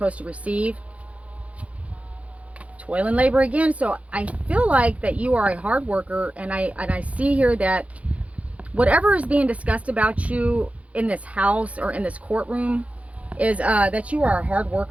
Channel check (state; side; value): late; left; 0.065 ms